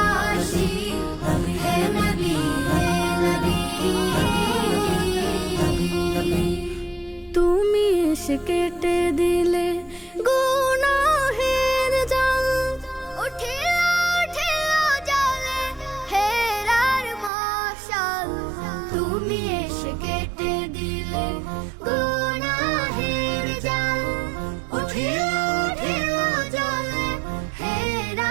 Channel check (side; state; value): left; drops out; at 17.3 s